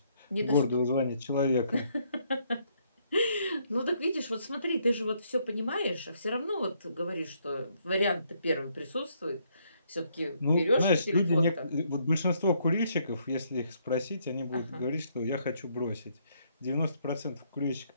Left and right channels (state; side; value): inverted; both; correlation -0.71